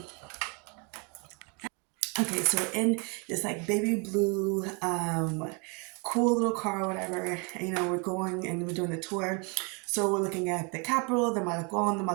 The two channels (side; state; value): left; quieter; 32.4 dB